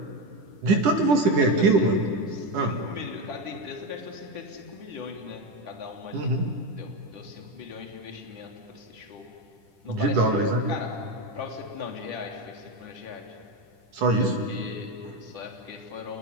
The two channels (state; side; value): late; left; 10 ms